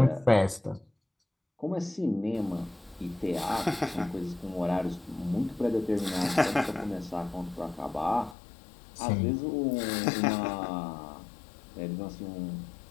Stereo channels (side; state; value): right; drops out; at 8.3 s